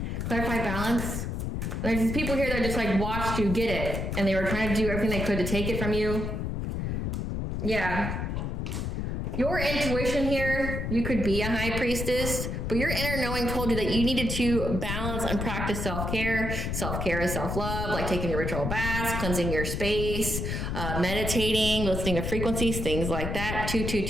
Clarify balance. There's these people here that just like watched you get it, and they were trying to do everything they could to take it from you. Yeah. Your intuition here, you could be a high priestess, but your inner knowing told you that you needed to balance and practice self-care. Self-care is self-love, like taking your ritual baths, cleansing your space, meditating, listening to frequencies, things like that.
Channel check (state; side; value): noise; left; rumble, 2 dB below the sound